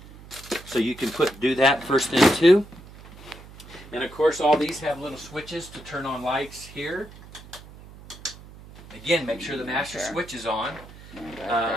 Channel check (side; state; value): right; noise; hum, 19 dB below the sound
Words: So you can do that first thing too. And of course all these have little switches to turn on lights here. Again, make sure the master switch is on.